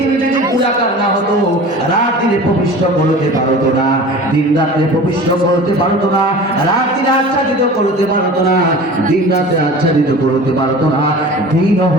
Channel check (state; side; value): normal; both; correlation 0.39